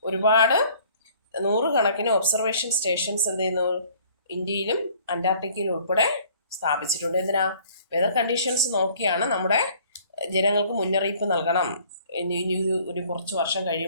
ഒരുപാട് നൂറുകണക്കിന് ഒബ്സർവേഷൻ സ്റ്റേഷൻസ് ഇന്ത്യയിലും അന്റാർട്ടിക്കയിലും ഉൾപ്പെടെ സ്ഥാപിച്ചിട്ടുണ്ട്. എന്തിനാ? വെതർ കണ്ടീഷൻസ് നോക്കിയാണ് നമ്മുടെ ജനങ്ങൾക്ക് മുന്നറിയിപ്പ് നൽകണം. ഇനി ഒരു കുറച്ച് വർഷം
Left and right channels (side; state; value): both; inverted; correlation -0.55